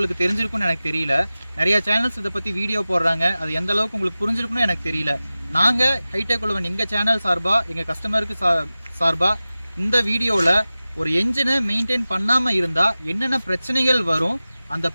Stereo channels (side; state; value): both; inverted; correlation -0.97